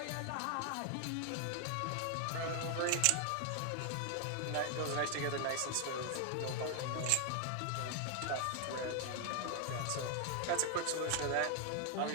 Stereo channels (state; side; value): different; both; correlation 0.00